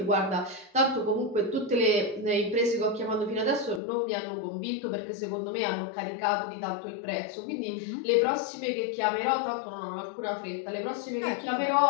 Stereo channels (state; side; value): drops out; right; at 3.8 s